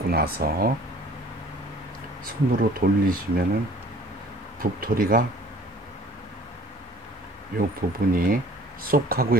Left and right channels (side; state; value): both; normal; correlation 0.52